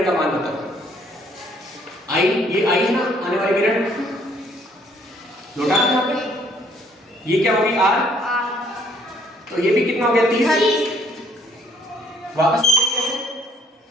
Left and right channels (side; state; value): both; normal; correlation 0.63